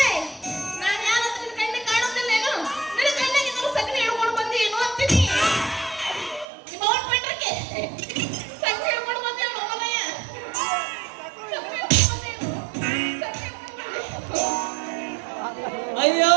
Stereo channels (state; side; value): drops out; left; at 6.5 s